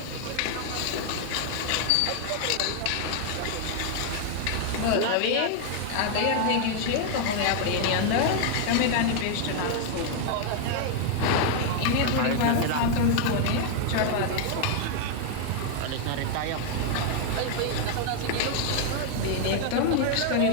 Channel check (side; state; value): both; different; correlation 0.00